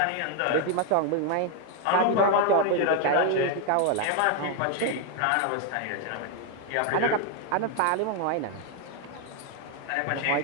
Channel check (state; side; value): different; both; correlation 0.01